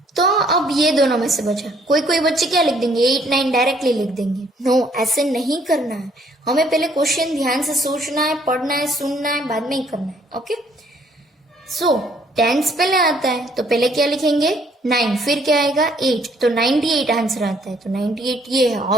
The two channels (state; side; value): normal; both; correlation 0.64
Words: तो अब ये दोनों में से बचा, कोई कोई बच्चे क्या लिख देंगे, 8 9 डायरेक्टली लिख देंगे। नो, ऐसे नहीं करना है, हमें पहले क्वेश्चन ध्यान से सोचना है, पढ़ना है, सुनना है, बाद में ही करना है। ओके, सो 10s पहले आता है तो पहले क्या लिखेंगे, 9, फिर क्या आएगा 8, तो 98 आंसर आता है, तो 98 ये है